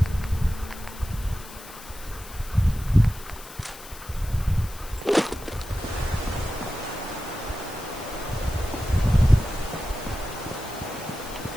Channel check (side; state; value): left; noise; hiss, 16 dB below the sound